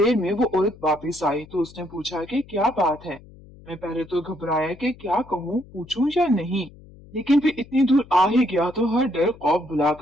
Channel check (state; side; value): noise; left; hum, 22 dB below the sound